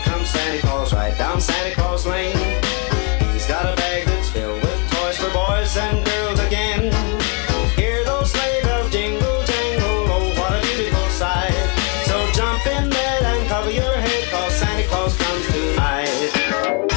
Santa Claus, right down Santa Claus Lane. He's got a bag that's filled with toys for boys and girls again. Hear those sleigh bells jingle, jangle, oh, what a beautiful sight. So jump in bed and cover your head, 'cause Santa Claus comes tonight.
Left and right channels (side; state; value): right; quieter; 34.1 dB